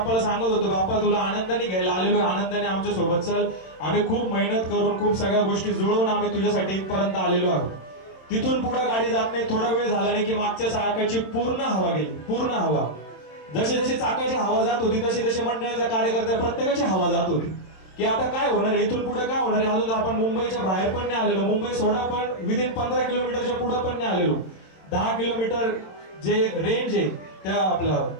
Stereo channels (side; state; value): right; late; 27 ms